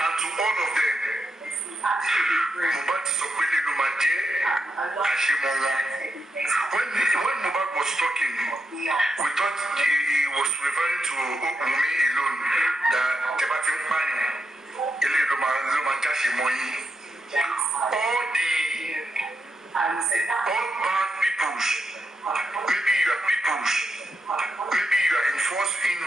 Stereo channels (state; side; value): normal; both; correlation 0.84